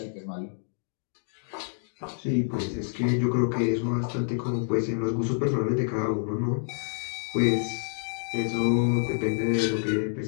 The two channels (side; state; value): right; silent; digital silence